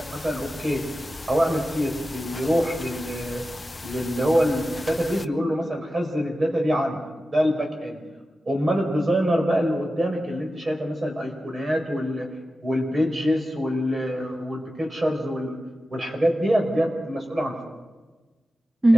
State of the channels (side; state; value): both; normal; correlation 0.93